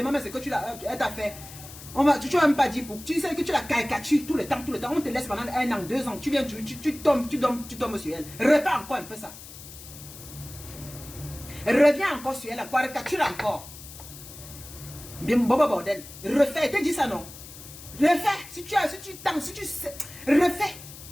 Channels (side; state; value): left; noise; hiss, 15 dB below the sound